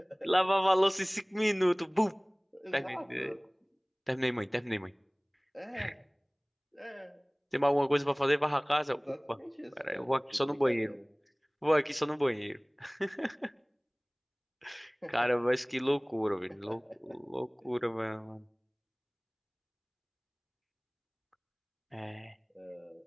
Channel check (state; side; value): identical; both; correlation 1.00